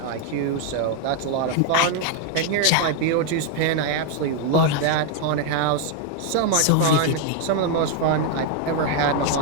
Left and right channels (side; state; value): both; different; correlation 0.00